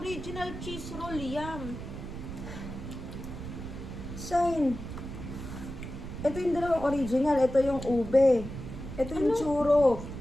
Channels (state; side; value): noise; right; rumble, 9 dB below the sound